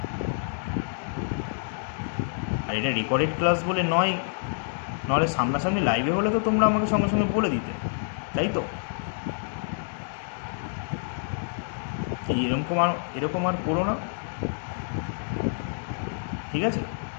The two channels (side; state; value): right; silent; digital silence